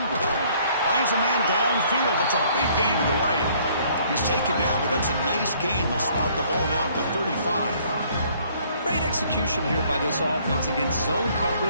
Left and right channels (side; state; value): both; inverted; correlation -0.61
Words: Finds a man downfield. That's a big gain to the right. He's taken down, but that's a nice gain. They'll spot the ball now at the 35. Great execution here by this offense against zone